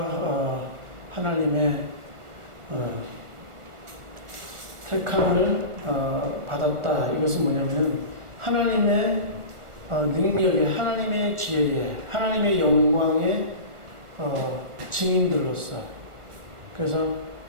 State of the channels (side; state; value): left; late; 1.4 ms